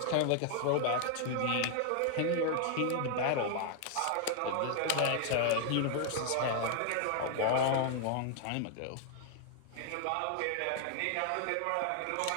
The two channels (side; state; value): both; different; correlation 0.00